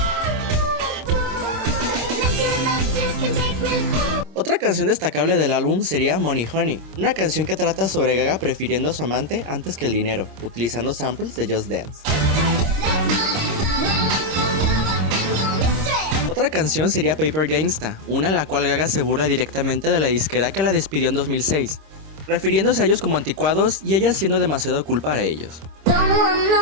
Otra canción destacable del álbum sería Money Honey, una canción que trata sobre Gaga prefiriendo a su amante antes que el dinero, utilizando samples de Just Dance. Otra canción sería Paper Gangsta, una en la cual Gaga se burla directamente de la disquera que la despidió en 2006. refiriéndose a ellos como anticuados y ella siendo demasiado cool para ellos.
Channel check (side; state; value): left; late; 26 ms